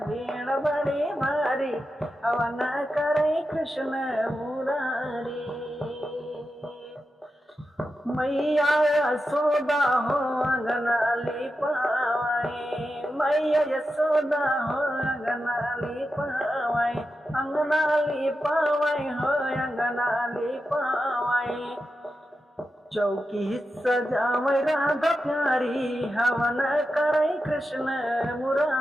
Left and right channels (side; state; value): both; normal; correlation 0.90